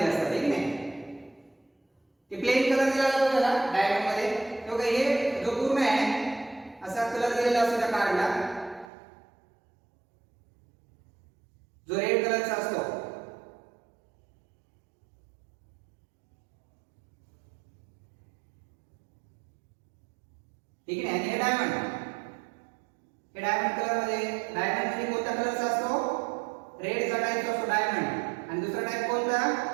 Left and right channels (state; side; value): drops out; left; at 8.9 s